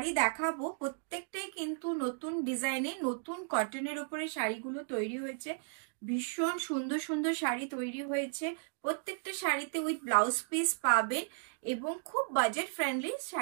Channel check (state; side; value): silent; left; digital silence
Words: দেখাবো। প্রত্যেকটাই কিন্তু নতুন ডিজাইনে, নতুন কটনের উপরে শাড়িগুলো তৈরি হয়েছে। ভীষণ সুন্দর সুন্দর শাড়ি তৈরি হয়েছে। প্রত্যেকটা শাড়িতে উইথ ব্লাউজ পিস পাবেন এবং খুব বাজেট ফ্রেন্ডলি